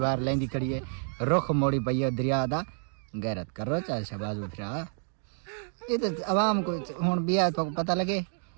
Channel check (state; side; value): silent; left; digital silence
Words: لیندی کھڑی ہے رخ موڑی پئی ہے دریا دا غیرت کرو چاہے شہباز اٹھرا یہ تو عوام کو ہن بیا تو پتہ لگے